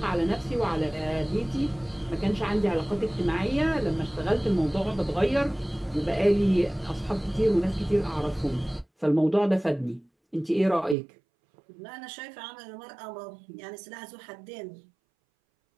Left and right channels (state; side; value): drops out; left; at 11.0 s